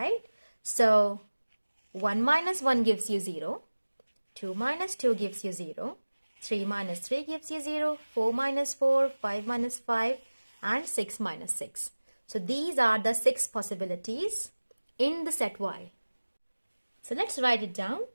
So 1 minus 1 gives you 0, 2 minus 2 gives you 0, 3 minus 3 gives you 0, 4 minus 4, 5 minus 5, and 6 minus 6. So these are the 6 possibilities in the set Y. So let's write it down.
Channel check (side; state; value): both; inverted; correlation -1.00